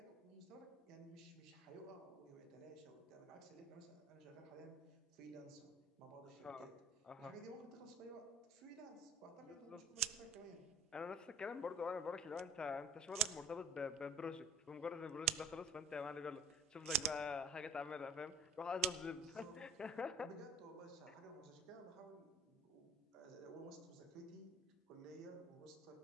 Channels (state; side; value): normal; both; correlation 0.51